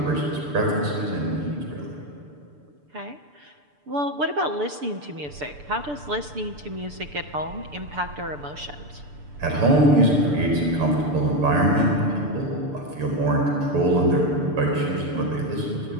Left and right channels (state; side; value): late; left; 6.8 ms